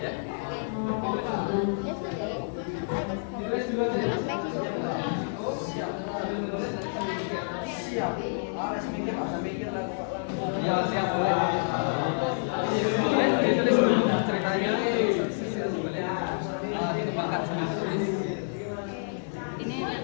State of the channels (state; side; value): silent; right; digital silence